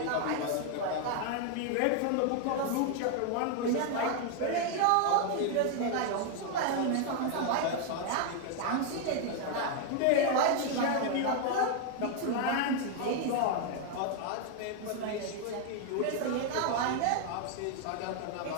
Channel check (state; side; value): different; both; correlation 0.00